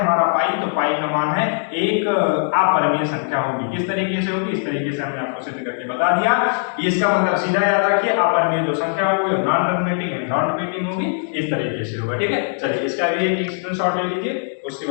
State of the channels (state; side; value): silent; right; digital silence